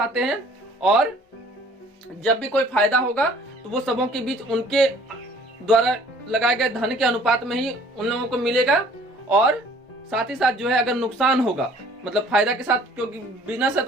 हैं, और जब भी कोई फायदा होगा तो वो सबों के बीच उनके द्वारा लगाए गए धन के अनुपात में ही उन लोगों को मिलेगा। और साथ ही साथ जो है अगर नुकसान होगा, मतलब फायदा के साथ, क्योंकि बिजनेस है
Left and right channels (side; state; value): both; normal; correlation 0.54